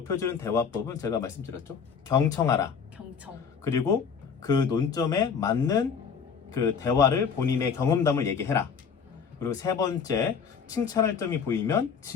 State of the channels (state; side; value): quieter; right; 6.4 dB